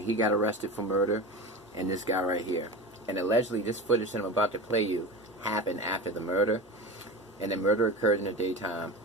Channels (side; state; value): both; normal; correlation 0.28